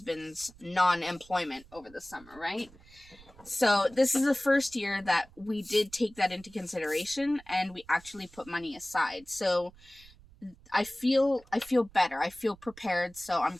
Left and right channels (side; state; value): right; noise; rumble, 24 dB below the sound